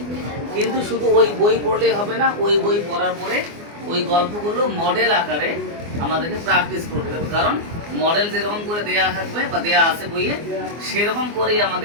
কিন্তু শুধু ওই বই পড়লেই হবে না, ওই বই পড়ার পরে ওই গল্পগুলো মডেল আকারে আমাদেরকে প্র্যাকটিস করতে হবে। কারণ মডেল যেরকম করে দেয়া থাকবে বা দেয়া আছে বইয়ে, সেরকম করেই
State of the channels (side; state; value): left; late; 24 ms